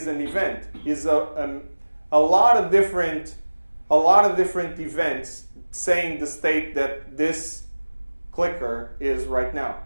an event, is a lot of different events saying the state that this clicker is right now.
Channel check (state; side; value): inverted; both; correlation -1.00